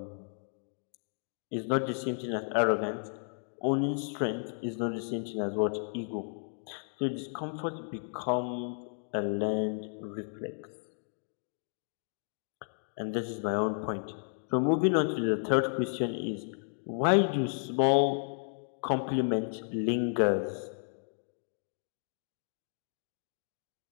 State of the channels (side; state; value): right; silent; digital silence